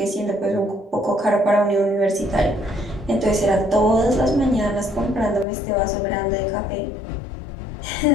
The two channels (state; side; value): drops out; right; at 5.5 s